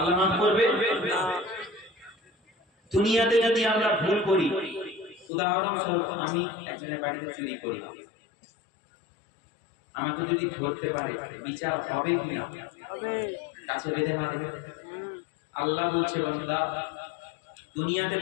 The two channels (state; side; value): drops out; right; at 5.3 s